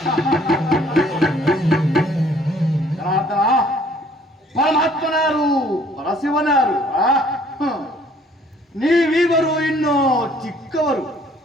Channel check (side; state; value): both; normal; correlation 0.59